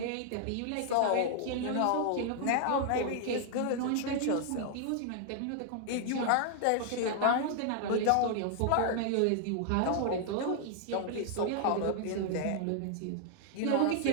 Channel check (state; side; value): different; both; correlation 0.00